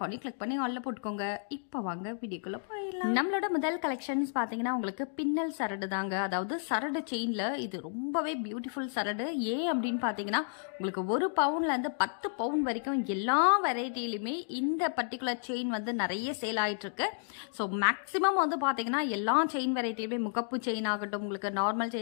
கிளிக் பண்ணி ஆல்ல போட்டுக்கோங்க. இப்போ வாங்க வீடியோக்குள்ள போயிடலாம். நம்மளோட முதல் கலெக்ஷன்ஸ் பாத்தீங்கன்னா உங்களுக்கு பின்னல் சரடு தாங்க. அதாவது சரடு செயின்ல இது ரொம்பவே பியூட்டிஃபுல் சரடு. அப்படின்னு பாத்தீங்கன்னா உங்களுக்கு 1 பவுன்ல இருந்து 10 பவுன் வரைக்கும் எல்லா வெரைட்டிலுமே இந்த பர்டிகுலர் செயின் வந்து நிறைய சேல் ஆயிட்டு இருக்கு. ஸோ மேக்சிமம் வந்து பாத்தீங்கன்னா எல்லா செயின் வெரைட்டிலுமே முகப்பு செயின் ஆகட்டும், உங்களுக்கு நார்மல்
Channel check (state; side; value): silent; right; digital silence